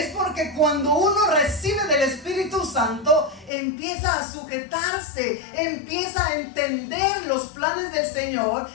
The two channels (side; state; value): right; drops out; at 3.5 s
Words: porque cuando uno recibe del Espíritu Santo, empieza a sujetarse, empieza a entender los planes del Señor